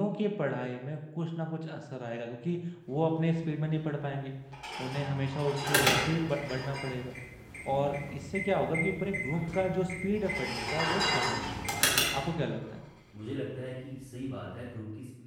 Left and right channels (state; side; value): identical; both; correlation 1.00